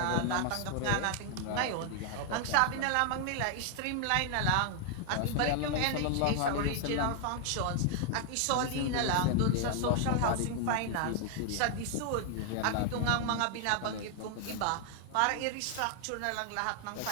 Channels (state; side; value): different; both; correlation 0.00